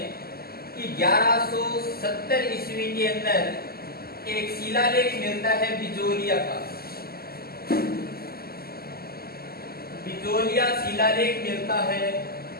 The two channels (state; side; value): late; right; 0.45 ms